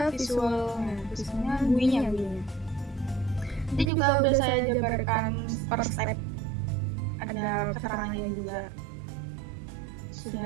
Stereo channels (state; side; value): drops out; left; at 3.9 s